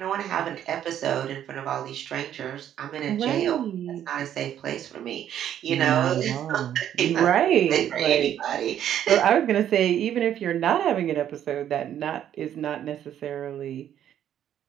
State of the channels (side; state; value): left; quieter; 10.5 dB